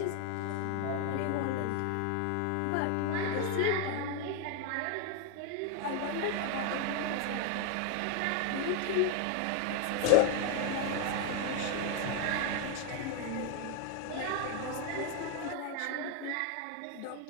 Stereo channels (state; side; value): different; both; correlation 0.01